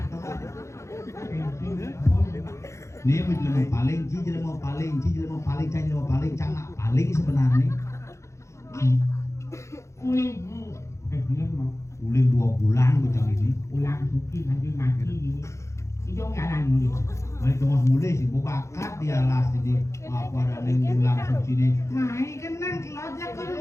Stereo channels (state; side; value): late; right; 0.14 ms